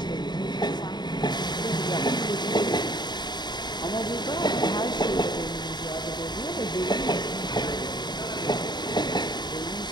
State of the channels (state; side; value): late; right; 0.21 ms